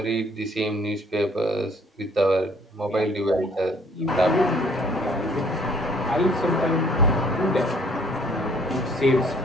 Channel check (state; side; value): normal; both; correlation 0.59